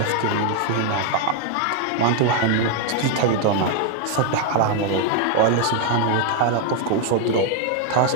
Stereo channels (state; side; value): different; both; correlation 0.00